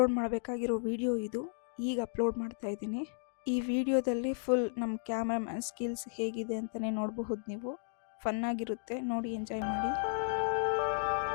ಮಾಡಬೇಕಾಗಿರೋ ವಿಡಿಯೋ ಇದು. ಈಗ ಅಪ್ಲೋಡ್ ಮಾಡ್ತಾ ಇದ್ದೀನಿ. ಈ ವಿಡಿಯೋದಲ್ಲಿ ಫುಲ್ ನಮ್ಮ ಕ್ಯಾಮ್ರಾಮ್ಯಾನ್ ಸ್ಕಿಲ್ಸ್ ಹೇಗಿದೆ ಅಂತಲೇ ನೋಡಬಹುದು. ನೀವು ಫನ್ನಾಗಿರುತ್ತೆ, ನೋಡಿ ಎಂಜಾಯ್ ಮಾಡಿ.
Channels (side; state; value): right; silent; digital silence